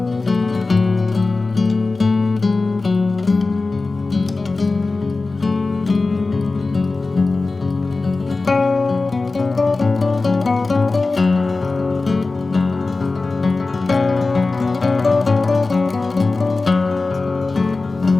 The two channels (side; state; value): right; quieter; 3.6 dB